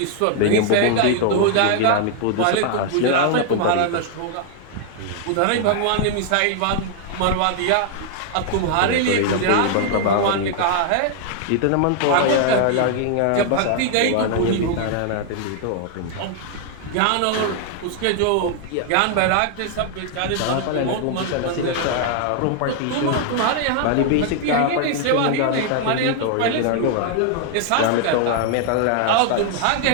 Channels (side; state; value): both; different; correlation 0.00